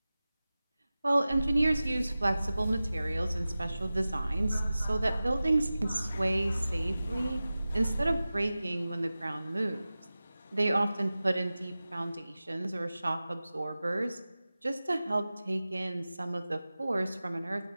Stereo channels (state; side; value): inverted; both; correlation -0.96